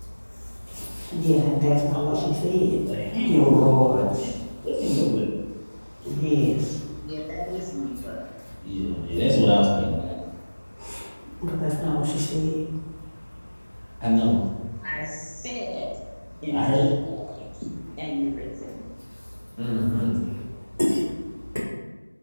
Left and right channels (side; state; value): both; inverted; correlation -1.00